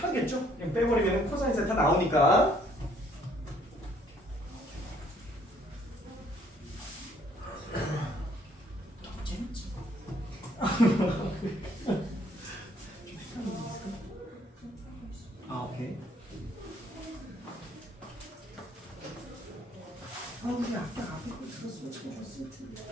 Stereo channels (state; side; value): normal; both; correlation 0.64